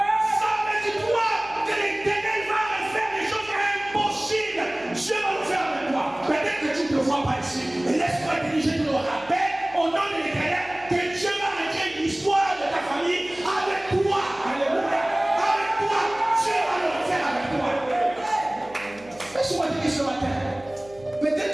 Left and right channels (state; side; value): noise; right; hum, 24 dB below the sound